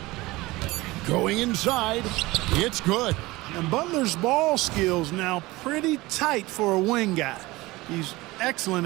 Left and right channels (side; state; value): left; quieter; 20.4 dB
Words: Going inside. It's good. And Butler's ball skills now pretty tight for a wing guy. He's